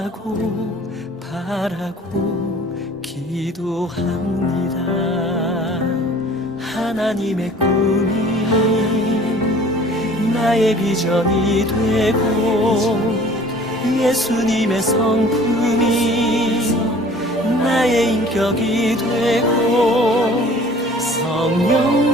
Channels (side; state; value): both; normal; correlation 0.49